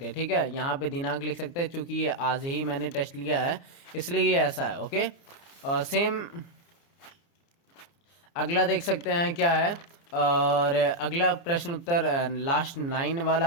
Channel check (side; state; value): right; late; 29 ms